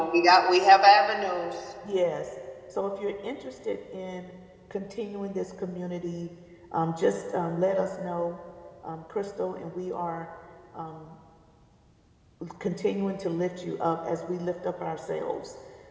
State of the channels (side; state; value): both; identical; correlation 1.00